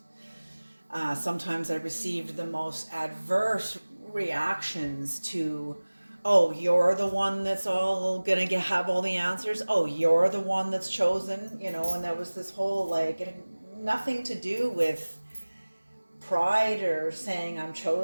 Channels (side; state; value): both; inverted; correlation -1.00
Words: Sometimes I received the most adverse reactions to, oh, you're the one that's all gonna have all the answers. Oh, you're the one that's chosen, you know, and there was this whole, like, it had nothing to do with pride or saying I'm